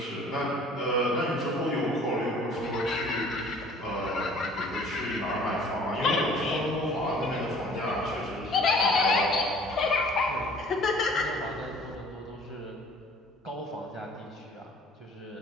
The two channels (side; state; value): both; normal; correlation 0.52